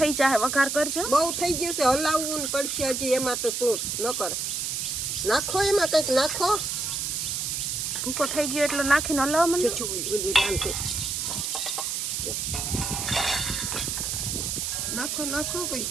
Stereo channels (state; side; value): noise; right; hiss, 2 dB below the sound